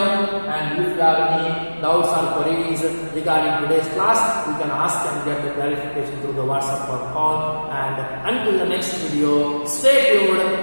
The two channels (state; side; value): inverted; both; correlation -1.00